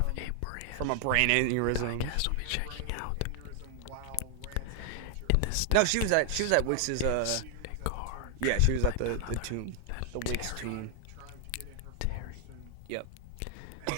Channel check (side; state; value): both; different; correlation 0.00